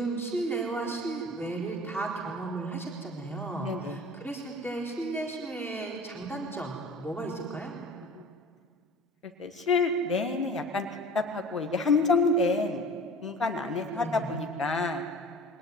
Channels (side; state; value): both; normal; correlation 0.41